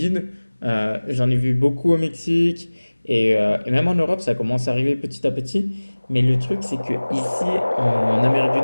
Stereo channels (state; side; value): inverted; both; correlation -1.00